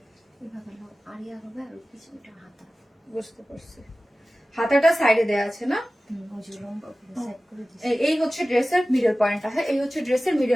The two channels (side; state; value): both; normal; correlation 0.96